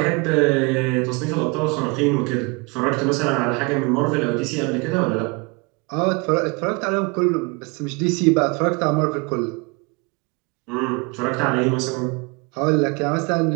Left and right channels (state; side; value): quieter; left; 28.9 dB